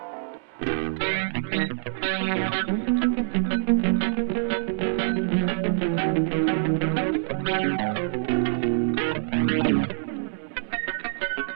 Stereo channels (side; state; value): left; silent; 61 dB below the other